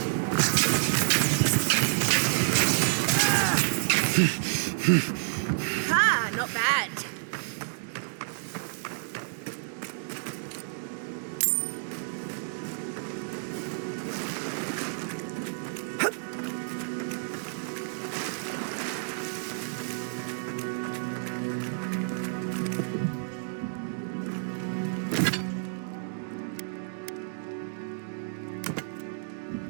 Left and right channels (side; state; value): left; silent; digital silence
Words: Ah, not bad.